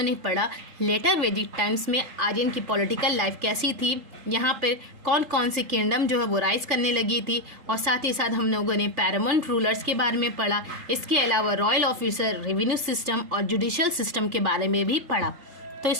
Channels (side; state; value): left; late; 3.8 ms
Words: ने पढ़ा लेटर वैदिक टाइम्स में आर्यन की पॉलिटिकल लाइफ कैसी थी, यहाँ पर कौन कौन सी किंगडम जो है वो राइज करने लगी थी, और साथ ही साथ हम लोगों ने पैरामाउंट रूलर्स के बारे में पढ़ा। इसके अलावा रॉयल ऑफिसर, रेवेन्यू सिस्टम और जुडिशियल सिस्टम के बारे में भी पढ़ा। तो